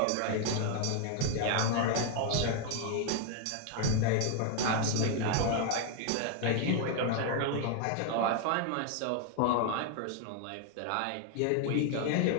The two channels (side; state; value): both; different; correlation 0.00